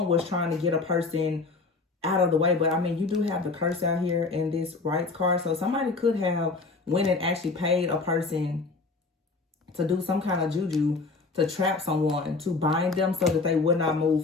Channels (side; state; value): right; quieter; 3.9 dB